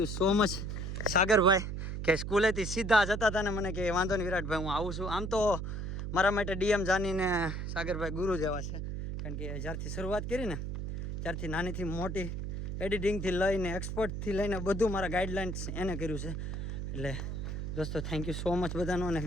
સો મચ સાગરભાઈ કે સ્કૂલેથી સીધા જતા હતા ને મને કે વાંધો નહીં વિરાટભાઈ હું આવું છું આમ તો મારા માટે ડીએમ જાનીને સાગરભાઈ ગુરુ જેવા છે કારણ કે જ્યારથી શરૂઆત કરી ને ત્યારથી નાનીથી મોટી એડિટિંગથી લઈને એક્સપર્ટથી લઈને બધું મારા ગાઈડલાઇન્સ એને કર્યું છે એટલે દોસ્તો થેન્ક યુ સો મચ બધાનો અને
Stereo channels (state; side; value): noise; right; hum, 4 dB below the sound